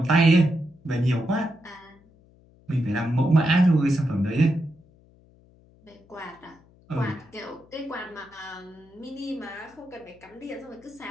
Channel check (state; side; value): noise; left; hum, 28 dB below the sound